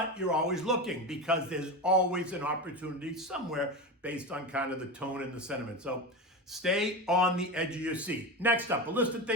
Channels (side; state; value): both; normal; correlation 0.22